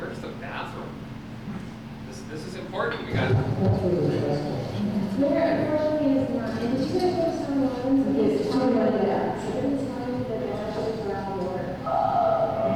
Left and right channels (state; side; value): identical; both; correlation 1.00